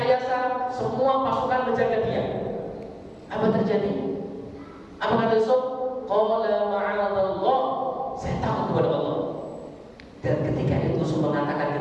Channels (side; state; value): both; identical; correlation 1.00